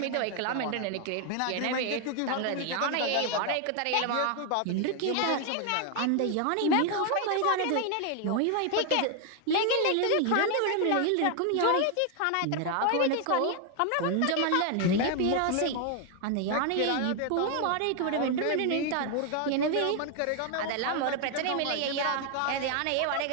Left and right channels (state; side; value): different; both; correlation 0.00